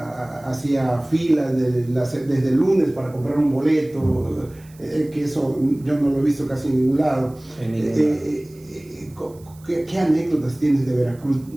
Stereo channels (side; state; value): right; noise; hiss, 27 dB below the sound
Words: hacía filas desde el lunes para comprar un boleto, que eso yo no lo he visto casi en ningún lado. ¿Qué anécdotas tienes de Veracruz,